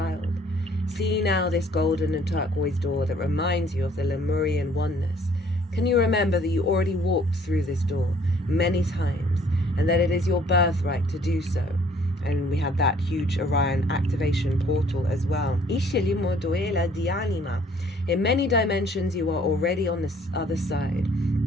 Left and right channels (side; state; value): both; normal; correlation 0.59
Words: See now this golden and turquoise door that reminds you of the Lemurian oneness. Can you remember that you already walked through this door many times, and that it is your birthright to do so? And we had that huge Orion activation portal as well. In many dimensions, you are already on this other side.